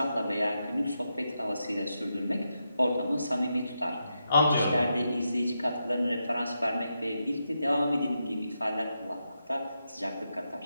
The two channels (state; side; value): inverted; both; correlation -0.85